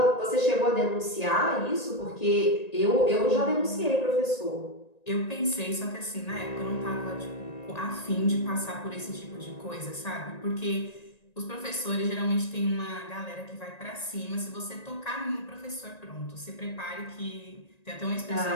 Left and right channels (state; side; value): late; right; 1.9 ms